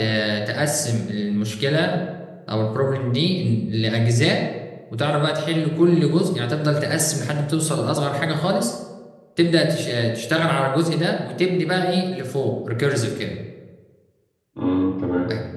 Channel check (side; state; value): both; identical; correlation 1.00